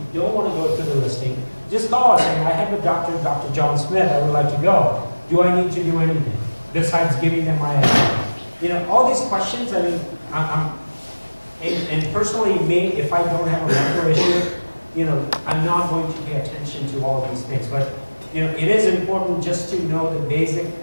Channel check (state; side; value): inverted; both; correlation -1.00